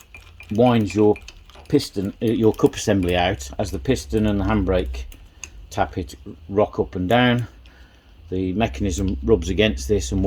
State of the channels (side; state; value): both; identical; correlation 1.00